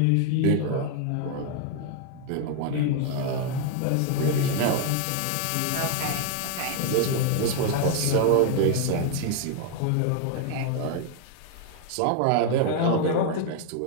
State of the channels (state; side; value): different; both; correlation 0.00